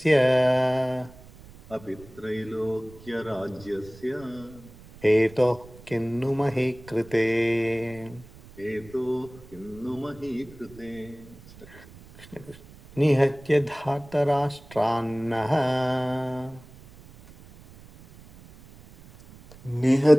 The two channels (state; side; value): noise; right; rumble, 21 dB below the sound